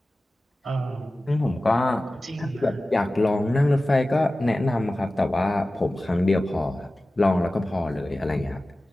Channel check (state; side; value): normal; both; correlation 0.96